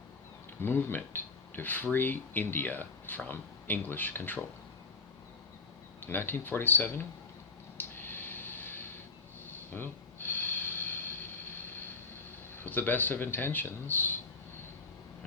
movement to free India from English control. In 1947, well, with the best of intentions,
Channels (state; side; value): quieter; right; 3.8 dB